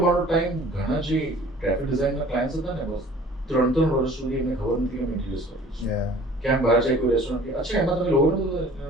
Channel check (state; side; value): normal; both; correlation 0.49